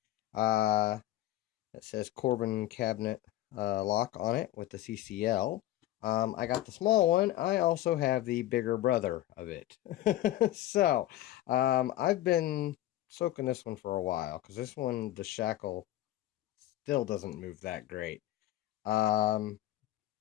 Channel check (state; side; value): quieter; right; 14.4 dB